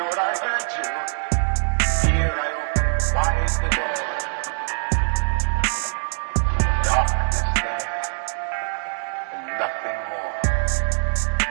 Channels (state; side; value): silent; left; digital silence